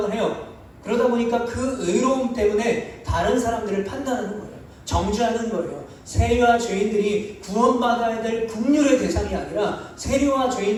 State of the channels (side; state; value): both; identical; correlation 1.00